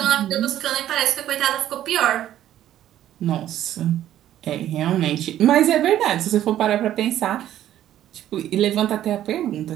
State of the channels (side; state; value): left; quieter; 12.2 dB